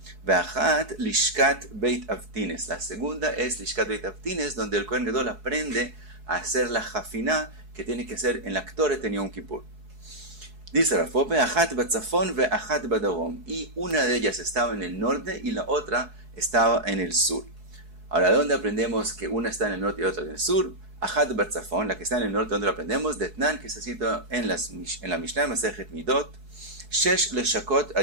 Veachat lishkat beit avtines, la segunda es lishkat beit avtines, donde el Kohen Gadol aprende a hacer la jafiná que tiene que ser en la Ktoret en Yom Kippur. Dice Rav Pope, Achat batzafon ve achat badarom, y una de ellas estaba en el norte y la otra estaba en el sur. Ahora, ¿de dónde aprendemos que una está en el norte y otra en el sur? Achat batzafon, la que está en el norte, ¿dónde lo aprendemos? Detnan, que se cita en la Mishnah Masejet Midot, Shesh leshakot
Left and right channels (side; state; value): left; late; 4.7 ms